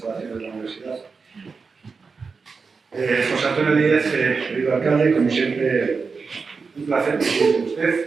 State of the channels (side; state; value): left; quieter; 4.9 dB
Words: de la universidad. José Antonio Díez, querido alcalde, como siempre, un placer coincidir con